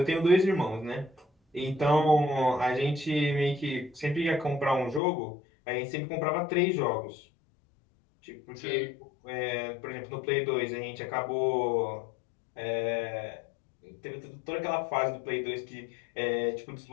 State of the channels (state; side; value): drops out; right; at 5.0 s